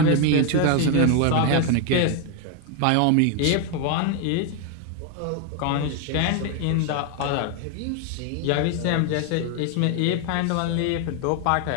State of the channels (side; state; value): both; different; correlation 0.01